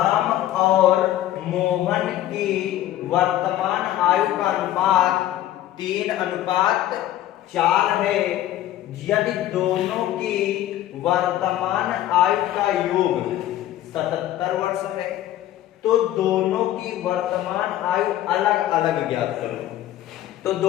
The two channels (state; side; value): quieter; right; 13.2 dB